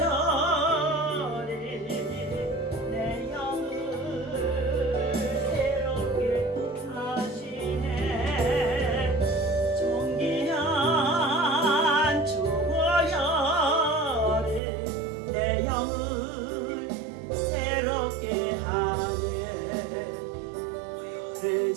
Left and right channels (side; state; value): left; drops out; at 14.6 s